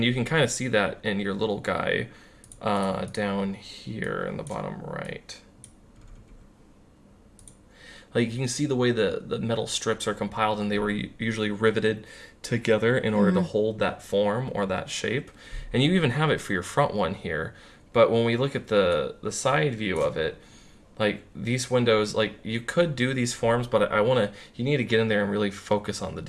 you can kind of see that in your little guy down here in the bottom right. Like you can see the way the metal strips are compiled, and they were usually riveted together in order to hold that form or that shape, and you even have it for your front one here. But when we look at the side view of it, like these windows, like you could do these forms, but you need to get in there and really focus on the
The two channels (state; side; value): identical; both; correlation 1.00